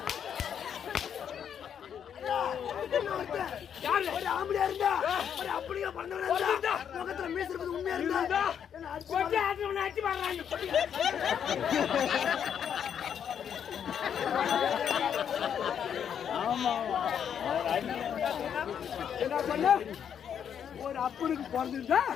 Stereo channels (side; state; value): right; quieter; 8.4 dB